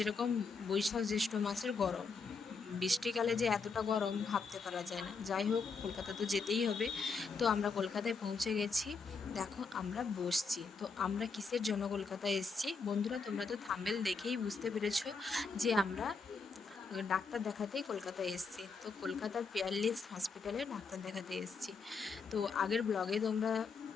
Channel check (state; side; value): quieter; right; 4.6 dB